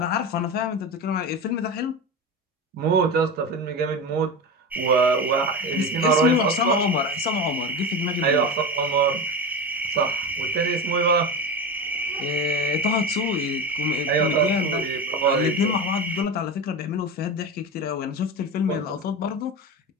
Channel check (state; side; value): normal; both; correlation 0.23